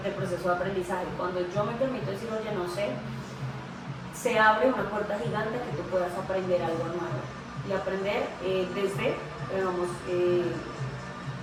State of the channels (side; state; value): both; identical; correlation 1.00